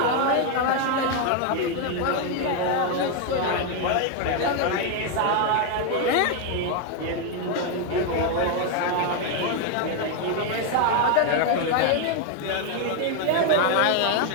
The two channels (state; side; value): different; both; correlation 0.01